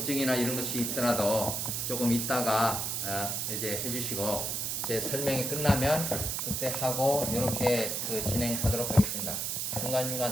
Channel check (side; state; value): right; noise; hiss, 1 dB below the sound